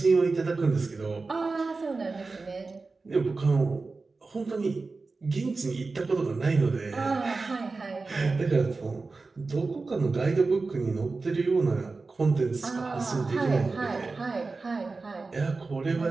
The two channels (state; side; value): quieter; left; 3.9 dB